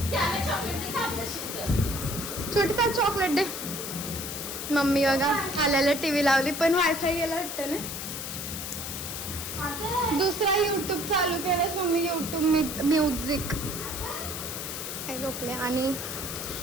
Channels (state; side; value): noise; left; hiss, 6 dB below the sound